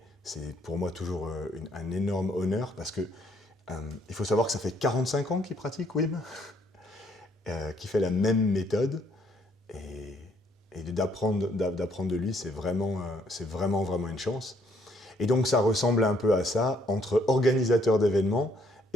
c'est pour moi toujours un énorme honneur parce que il faut savoir que ça fait 45 ans qu'il pratique Wim, qu'il fait la même méthode. Et d'apprendre de lui, c'est vraiment une chance. Et donc ça ressemble un peu à ça, entre organisateur d'événements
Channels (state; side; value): normal; both; correlation 0.67